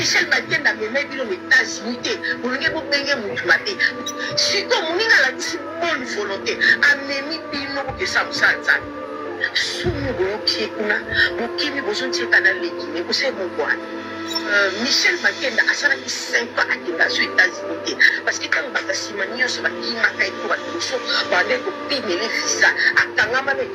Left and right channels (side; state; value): both; identical; correlation 1.00